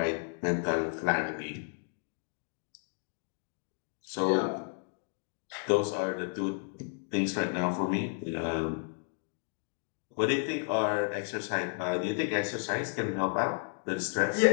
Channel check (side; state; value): right; silent; 56 dB below the other